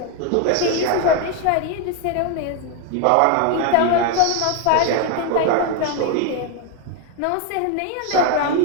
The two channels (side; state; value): both; different; correlation 0.01